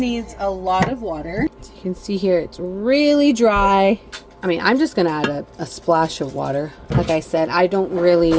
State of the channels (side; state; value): both; identical; correlation 1.00